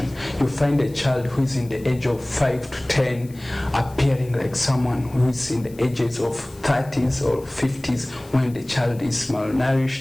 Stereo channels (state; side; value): noise; left; hiss, 24 dB below the sound